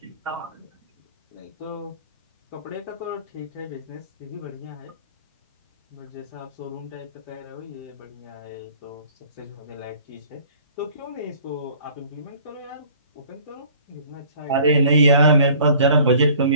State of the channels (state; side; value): inverted; both; correlation -0.51